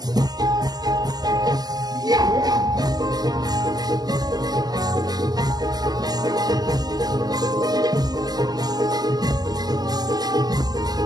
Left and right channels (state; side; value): late; left; 0.20 ms